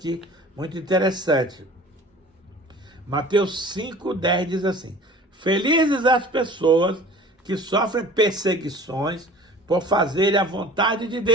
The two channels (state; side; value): normal; both; correlation 0.43